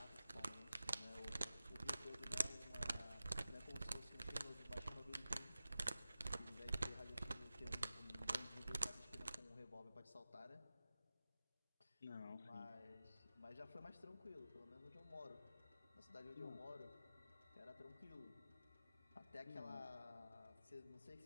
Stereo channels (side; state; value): both; inverted; correlation -0.95